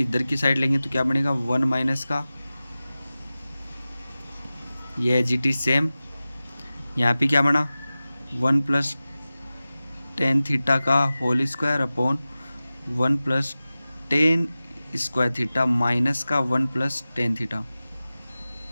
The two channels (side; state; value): both; inverted; correlation -0.96